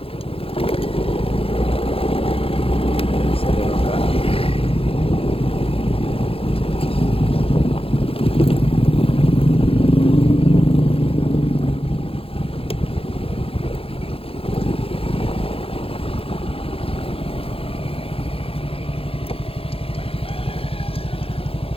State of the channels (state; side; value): late; right; 0.27 ms